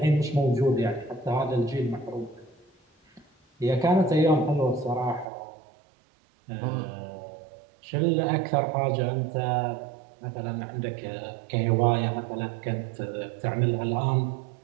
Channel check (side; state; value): left; drops out; at 5.2 s